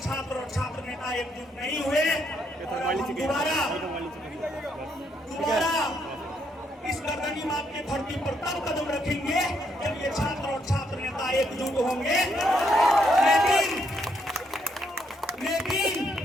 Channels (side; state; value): both; normal; correlation 0.74